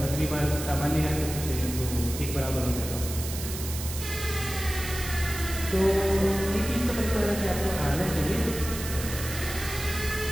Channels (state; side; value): noise; right; hiss, 8 dB below the sound